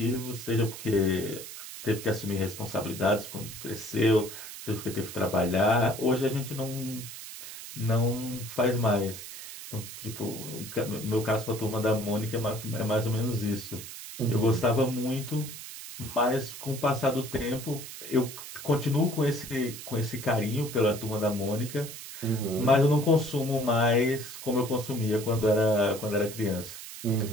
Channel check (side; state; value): right; noise; hiss, 11 dB below the sound